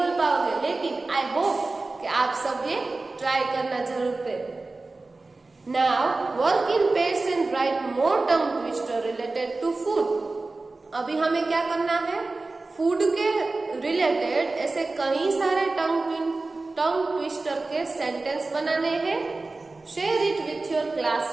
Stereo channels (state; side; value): quieter; left; 3.4 dB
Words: पाओगे, लेकिन आई होप कि आप सब ये ट्राई करना जरूर करें. Now work in pairs and write more tongue twister related to food. अभी हमें क्या करना है? फूड के रिलेटेड ऐसे कई सारे टंग ट्विस्टर के सेंटेंस बनाने हैं. Share it with your